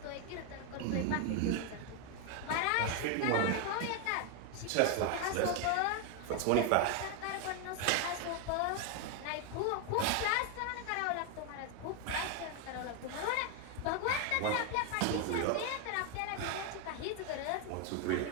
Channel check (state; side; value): different; both; correlation 0.01